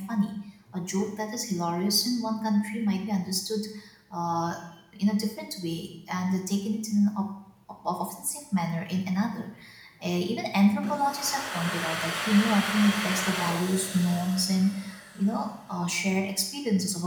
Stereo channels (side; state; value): both; identical; correlation 1.00